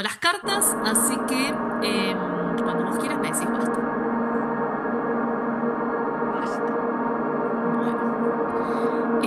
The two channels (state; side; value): identical; both; correlation 1.00